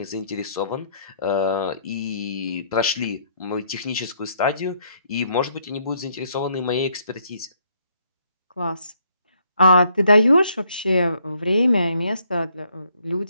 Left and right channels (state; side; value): inverted; both; correlation -0.69